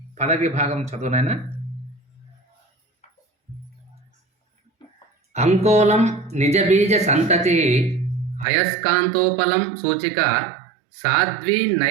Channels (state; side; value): drops out; left; at 8.5 s